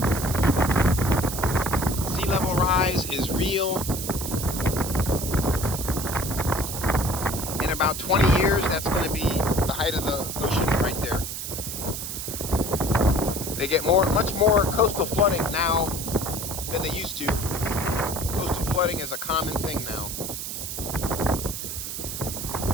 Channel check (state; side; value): noise; right; hiss, 6 dB below the sound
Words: Sea level rise is real. In about 20 years, that's going to be the height of the ocean right there. They get much more coastal flooding now than they used to. Coastal flooding is a common thing now.